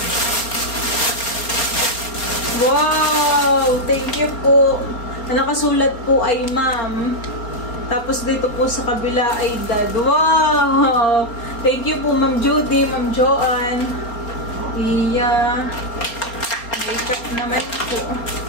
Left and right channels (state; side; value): late; right; 4.3 ms